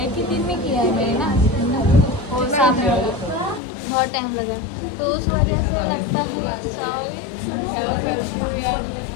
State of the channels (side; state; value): right; drops out; at 3.6 s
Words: ही दिन में किया है मैंने ना, और सामने बहुत टाइम लगा, तो उस वजह से लगता है